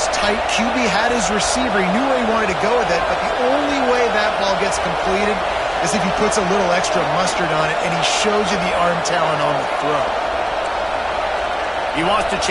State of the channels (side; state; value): both; identical; correlation 1.00